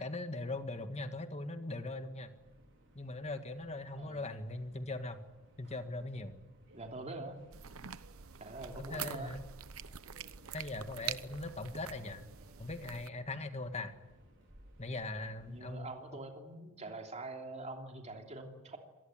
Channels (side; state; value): both; normal; correlation 0.37